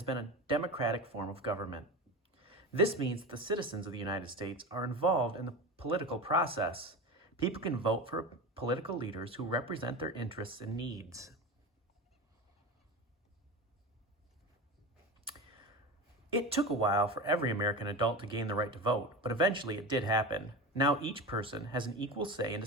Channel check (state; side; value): normal; both; correlation 0.26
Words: been a democratic form of government. This means that the citizens of the United States are involved in the political process. People can vote for political leaders who represent their interests and needs. It took a while for every American adult to gain the right to vote, but eventually it did happen. Now each person has an equal say in